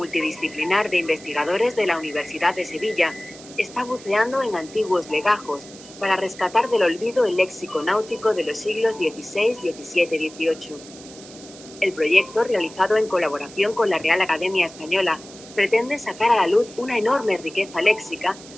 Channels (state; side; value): noise; right; hiss, 18 dB below the sound